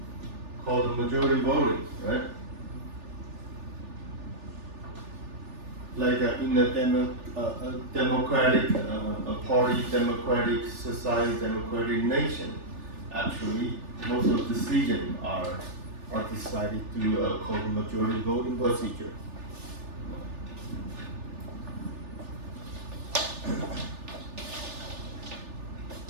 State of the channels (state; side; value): late; left; 3.4 ms